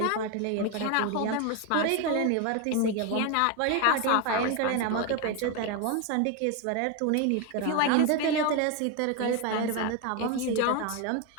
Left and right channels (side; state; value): both; different; correlation 0.02